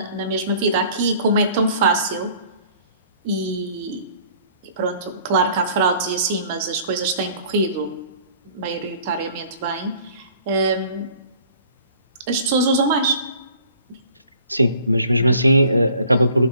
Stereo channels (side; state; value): both; inverted; correlation -0.53